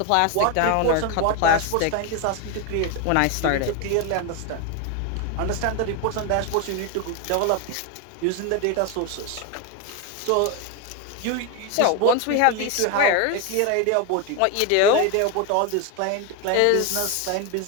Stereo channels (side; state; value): both; different; correlation 0.02